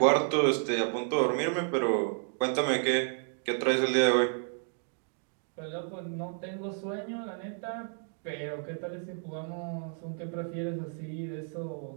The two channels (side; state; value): left; silent; 57 dB below the other